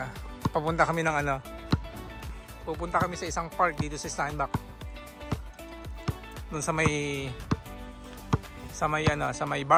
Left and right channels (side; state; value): both; identical; correlation 1.00